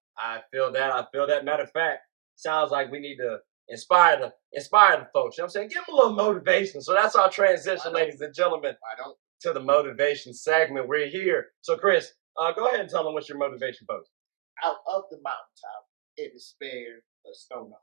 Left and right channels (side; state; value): left; quieter; 20.8 dB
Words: I feel that. Matter of fact, sounds like we need to inspire the folks. You know what I'm saying? Give them a little motivation. So that's our transition, ladies and gentlemen. I don't. To the motivation segment. We're here. So, Chris, go ahead and tell them what's your motivation post. Out of the mountaintop, it is spared a stone of